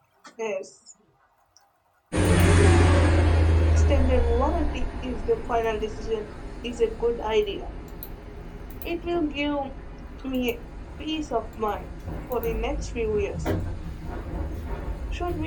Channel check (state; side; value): identical; both; correlation 1.00